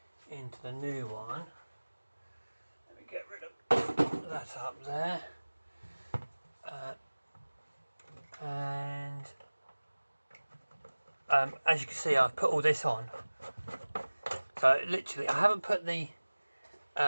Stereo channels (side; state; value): both; inverted; correlation -1.00